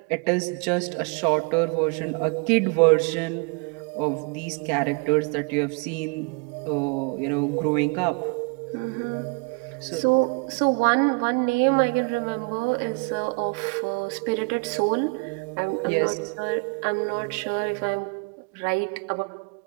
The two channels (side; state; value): left; quieter; 32.4 dB